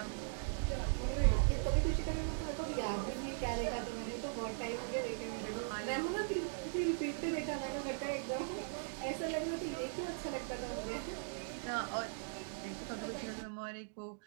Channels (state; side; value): silent; left; digital silence